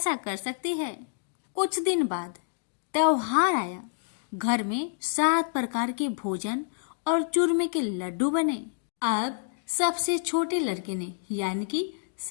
कर सकती है। कुछ दिन बाद त्योहार आया। घर में 7 प्रकार के भोजन और चूरमे के लड्डू बने। अब सबसे छोटे लड़के ने यानी कि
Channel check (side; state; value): right; silent; digital silence